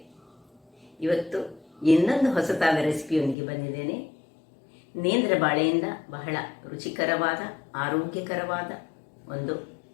ಇವತ್ತು ಇನ್ನೊಂದು ಹೊಸತಾದ ರೆಸಿಪಿಯೊಂದಿಗೆ ಬಂದಿದ್ದೇನೆ. ನೇಂದ್ರ ಬಾಳೆಯಿಂದ ಬಹಳ ರುಚಿಕರವಾದ ಆರೋಗ್ಯಕರವಾದ ಒಂದು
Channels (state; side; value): drops out; right; at 3.4 s